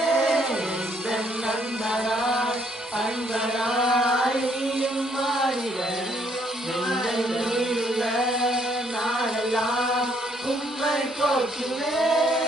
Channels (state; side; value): normal; both; correlation 0.68